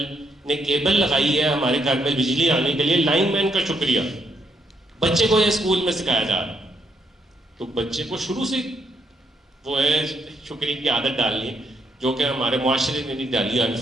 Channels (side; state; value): both; normal; correlation 0.75